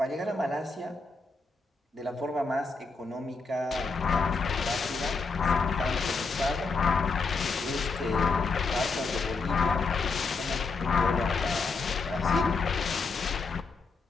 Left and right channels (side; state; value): right; quieter; 4.2 dB